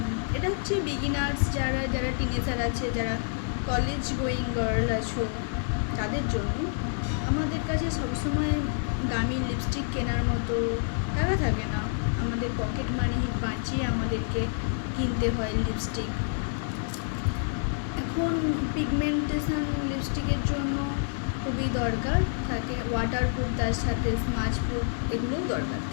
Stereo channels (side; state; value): right; silent; digital silence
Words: এটা হচ্ছে বিগিনার্স, যারা টিনেজার আছে, যারা কলেজ গোয়িং গার্ল আছো তাদের জন্য। আমাদের কাছে সবসময় দামি লিপস্টিক কেনার মতো টাকা থাকে না, আমাদের পকেট মানি বাঁচিয়ে আমাদেরকে কিনতে হয় লিপস্টিক। এখন পিগমেন্টেশন লিপস্টিকের জন্য খুবই দরকার থাকে, ওয়াটারপ্রুফ, তার সাথে স্মাচ প্রুফ এগুলোও দরকার